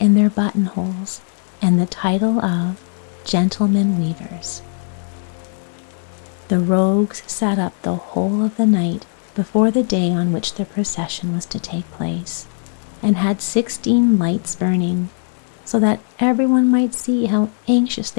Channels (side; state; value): right; silent; digital silence